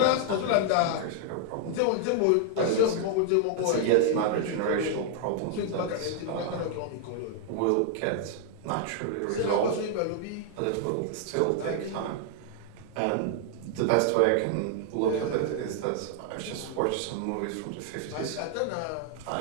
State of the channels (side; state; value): both; different; correlation 0.00